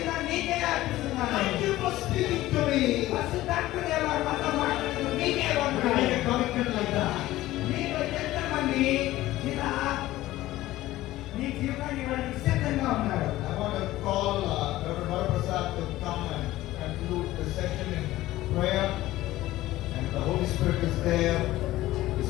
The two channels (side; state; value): right; quieter; 16.2 dB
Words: నీకే అర్పిస్తున్నాను. Thank you for speaking to me. పరిశుద్ధాత్మదేవా, మాతో మాట్లాడుతూ నీకే To make a వందనాలు. commitment like that. మీలో ఎంతమంది ఇలా నీ జీవితాన్ని ఇవ్వడానికి సిద్ధంగా ఉన్నారు? I want to call Dr. Varaprasad to come and conclude the session in prayer. And the Holy Spirit is there, is